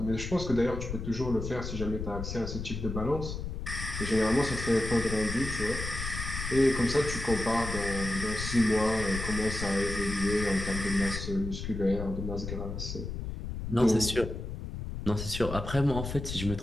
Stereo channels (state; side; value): noise; left; rumble, 6 dB below the sound